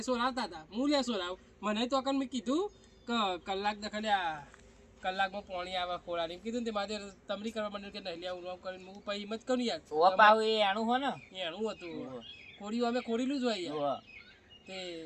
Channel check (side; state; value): both; identical; correlation 1.00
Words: સોરાવતા હતા હું લે સોરાવ મને તો મેં કીધું કે કલાક દખલ્યા કલાકમાં પાણી આવે ખોળાની કીધું ને તે મારે તમરી કરવા માંડ્યું કે નહીં લે હું કરીને હું પછી હિંમત કરું યાર ઓ પાવ એ આણું હો ને એનું હતું ખોડિયું અમે ખોડીલું જ હોય યાર તે